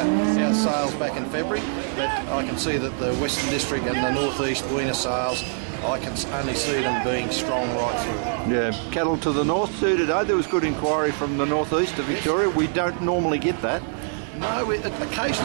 sales back in February. But I can see that the Western District and the North East weaner sales, I can only see them being strong right through. Yeah, cattle to the north too today. There was good inquiry from the northeast of Victoria. We don't normally get that. No,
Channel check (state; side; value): silent; left; 63 dB below the other